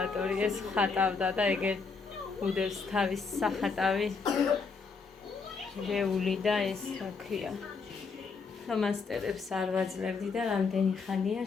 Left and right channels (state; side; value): quieter; right; 4.8 dB